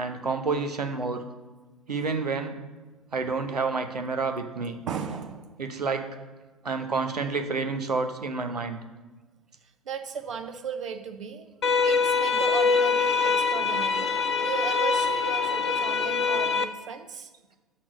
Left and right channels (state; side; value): normal; both; correlation 0.47